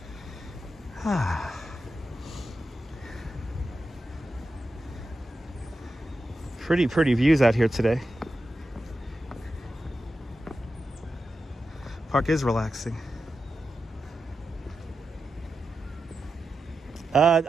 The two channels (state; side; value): normal; both; correlation 0.90